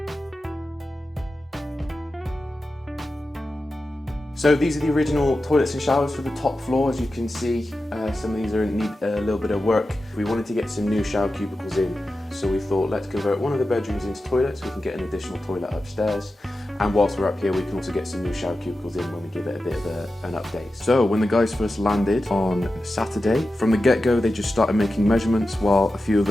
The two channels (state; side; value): normal; both; correlation 0.93